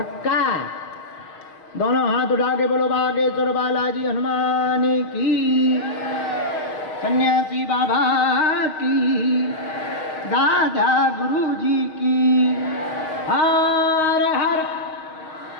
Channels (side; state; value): right; late; 6.4 ms